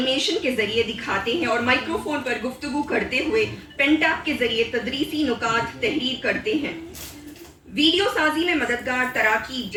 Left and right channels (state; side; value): identical; both; correlation 1.00